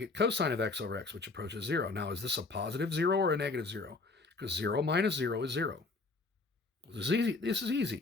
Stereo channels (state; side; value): quieter; right; 3.7 dB